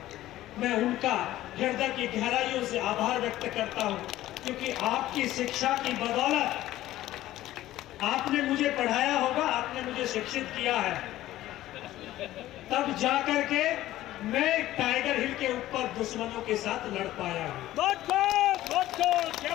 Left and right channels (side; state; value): right; quieter; 14.9 dB